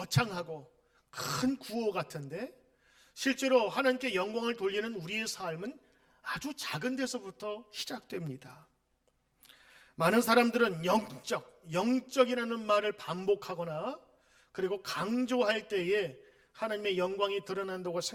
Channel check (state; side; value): identical; both; correlation 1.00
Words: 큰 구호 같은데, 실제로 하나님께 영광을 돌리는 우리의 삶은 아주 작은 데서부터 시작됩니다. 많은 사람들은 영적이라는 말을 반복하거나 그리고 강조할 때에 하나님의 영광이 드러난다고